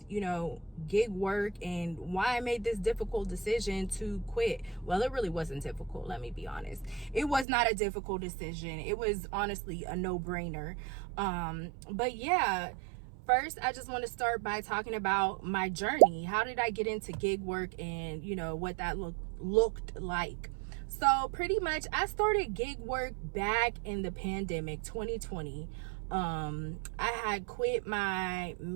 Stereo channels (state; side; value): drops out; left; at 7.5 s